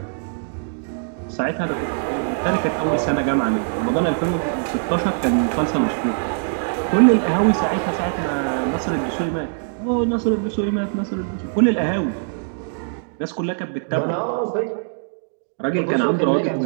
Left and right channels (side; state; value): left; silent; digital silence